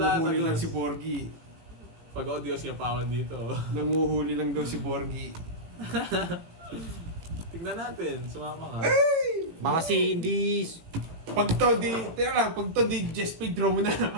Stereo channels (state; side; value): late; left; 18 ms